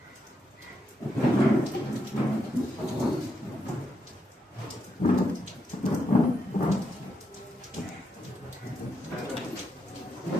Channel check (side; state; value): both; normal; correlation 0.81